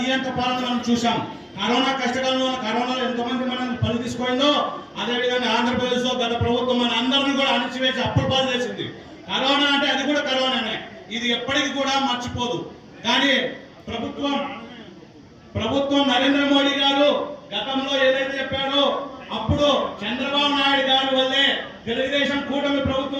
పాలన మనం చూసాం. కరోనా కష్టకాలంలో కరోనాలో ఎంతమంది మనం పని తీసుకుందో అదేవిధంగా ఆంధ్రప్రదేశ్ లో గత ప్రభుత్వం మన అందరినీ కూడా అణిచివేసి అప్పుడు పాలు చేసింది. కరోనా అంటే అది కూడా కరోనానే, ఇది ఎప్పటికీ కూడా మర్చిపోదు. కానీ ప్రభుత్వం నరేంద్ర మోడీ గారు గతంలో ఏదైతే చెప్పాడో అప్పుడు చంద్రబాబు నాయుడు గారి వల్లే తెలుగుదేశం కూటమి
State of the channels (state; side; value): identical; both; correlation 1.00